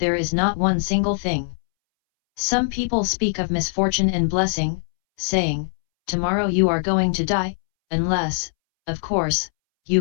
is not one single thing. Some people speak of misfortune and blessing, saying, tomorrow you are going to die, unless, of course,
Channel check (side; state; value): right; silent; 64 dB below the other